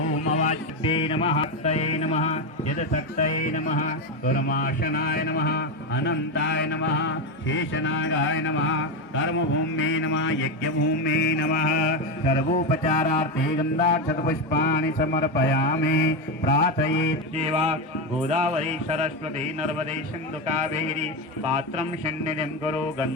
अवाच्ये नमः शक्तये नमः यदशक्तये नमः कर्माशनाय नमः अनन्ताय नमः शेषनागाय नमः कर्मभूम्ये नमः यज्ञभूम्ये नमः सर्वोपचारार्थे गन्धाक्षतपुष्पाणि समर्पयामि प्रार्थयेत् देवा गोदावरी सरस्वती नर्मदे सिन्धु कावेरी पात्रं सन्निधिं कुरु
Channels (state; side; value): normal; both; correlation 0.12